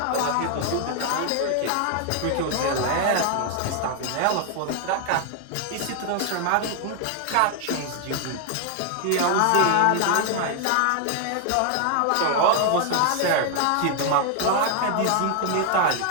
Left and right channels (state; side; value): different; both; correlation 0.00